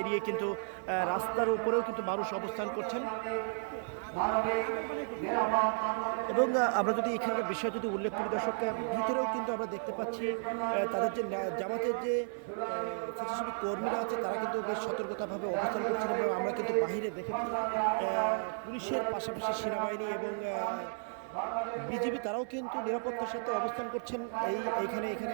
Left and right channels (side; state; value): left; silent; digital silence